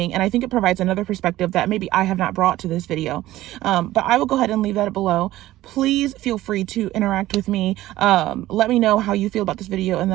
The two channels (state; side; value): quieter; left; 15.6 dB